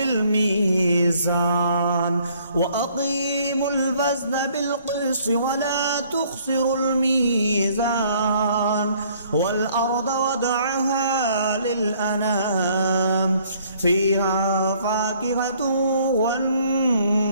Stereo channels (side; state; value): both; inverted; correlation -0.61